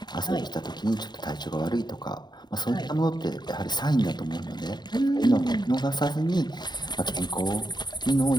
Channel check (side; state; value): right; late; 0.21 ms